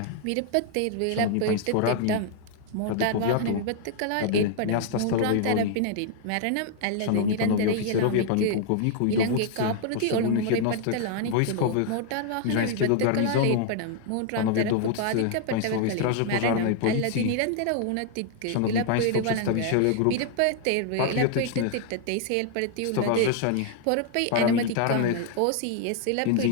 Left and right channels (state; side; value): different; both; correlation 0.00